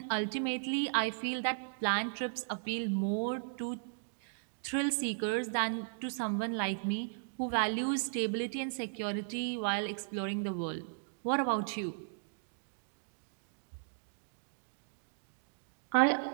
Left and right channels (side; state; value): left; silent; digital silence